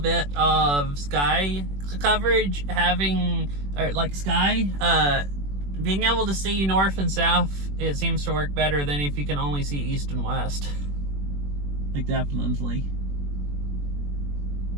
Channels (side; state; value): left; late; 21 ms